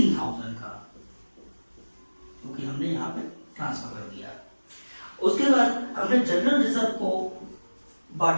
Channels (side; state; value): both; inverted; correlation -1.00